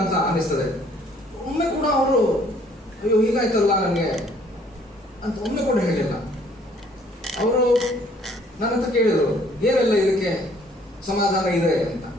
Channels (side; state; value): both; normal; correlation 0.60